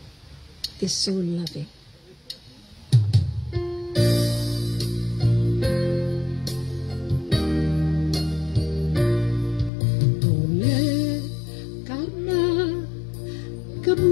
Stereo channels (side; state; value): right; drops out; at 9.7 s